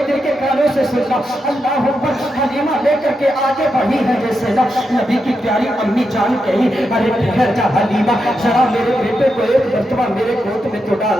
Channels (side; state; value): both; normal; correlation 0.85